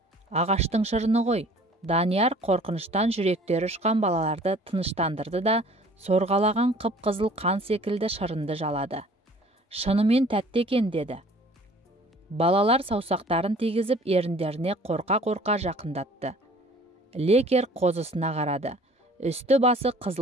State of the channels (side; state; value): both; normal; correlation 0.51